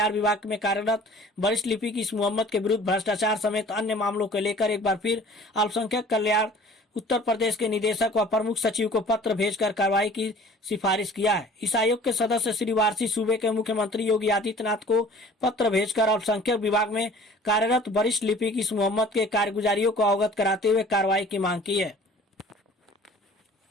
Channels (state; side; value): normal; both; correlation 0.48